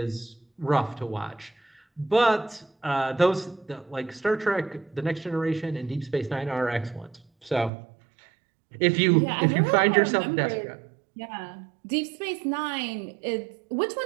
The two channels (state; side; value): drops out; left; at 7.7 s